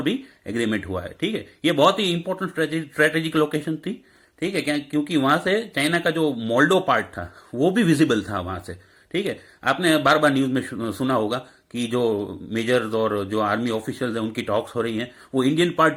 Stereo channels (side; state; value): both; identical; correlation 1.00